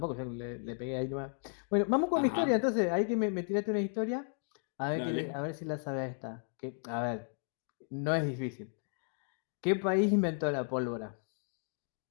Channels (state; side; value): silent; right; 55 dB below the other